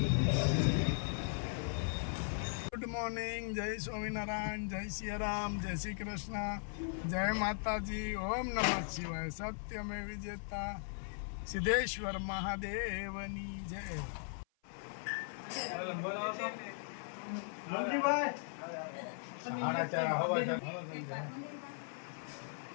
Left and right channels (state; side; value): silent; right; 52 dB below the other